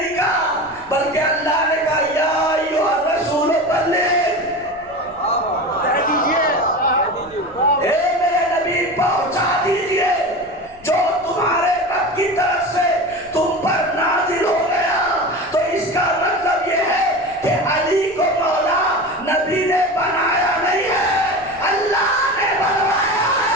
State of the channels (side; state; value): left; noise; rumble, 25 dB below the sound